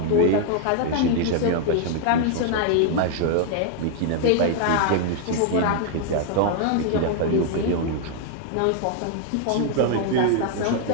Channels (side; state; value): both; different; correlation 0.00